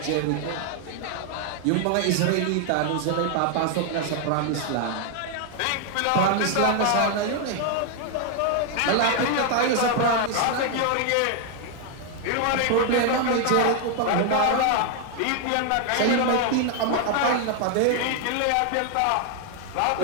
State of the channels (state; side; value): different; both; correlation 0.00